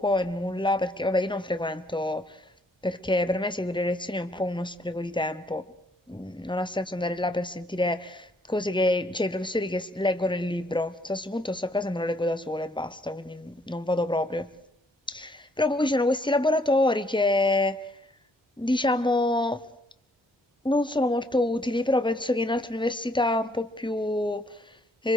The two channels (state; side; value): normal; both; correlation 0.67